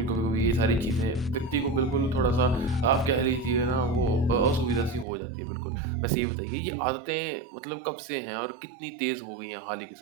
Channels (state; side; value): drops out; left; at 5.1 s